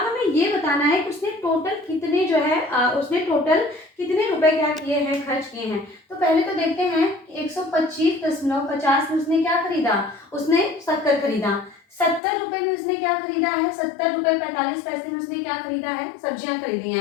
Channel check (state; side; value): drops out; right; at 12.2 s